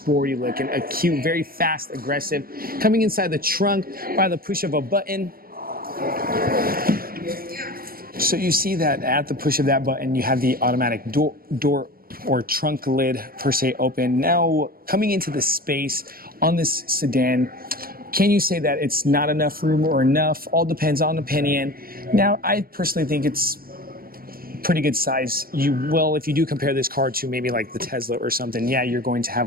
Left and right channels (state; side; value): late; left; 0.43 ms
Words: looking, a cute, very fast, aggressive. Coming inside the trunk by the push of a button. So you see that at the push of that button, you have the automatic door or trunk lid per se open. Now coming into the space on this sedan, can you say that it's not enough room or enough? All depends on opinion. Now, I personally think it's pretty good size. You will, if you do compare this car to maybe like the Tesla or something, yeah, you're going to